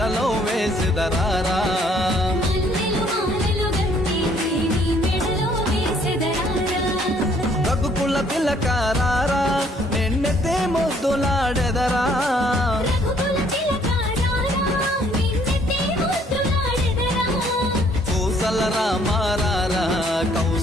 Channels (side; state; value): both; normal; correlation 0.63